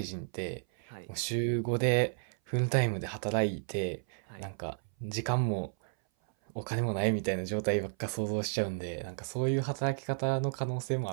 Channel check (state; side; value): silent; left; 56 dB below the other